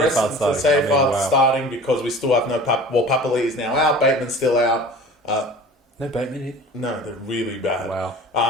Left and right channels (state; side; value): normal; both; correlation 0.41